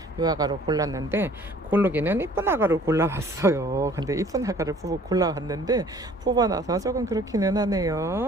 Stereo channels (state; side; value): normal; both; correlation 0.53